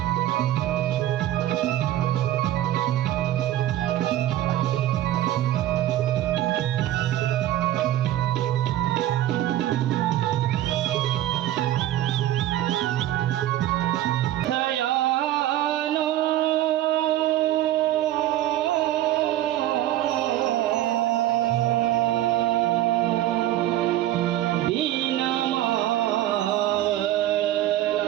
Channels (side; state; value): left; quieter; 13.5 dB